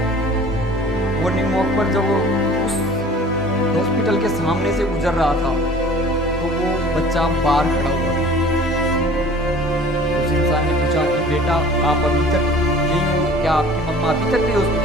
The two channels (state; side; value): normal; both; correlation 0.46